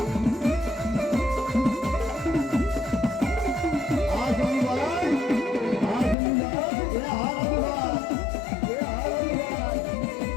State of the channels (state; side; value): drops out; right; at 6.2 s